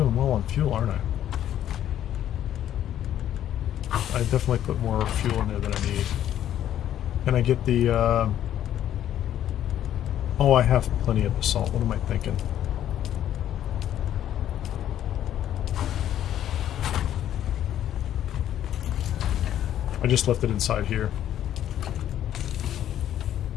well on fuel, aren't I? I definitely put more fuel in there than I need. Can I get the, Oh, I have plenty of basalt. What am I thinking? I just left it inside here.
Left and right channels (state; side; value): quieter; right; 11.2 dB